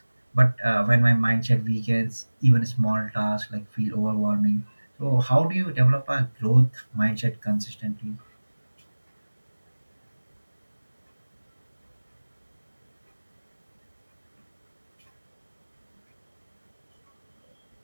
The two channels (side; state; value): both; inverted; correlation -1.00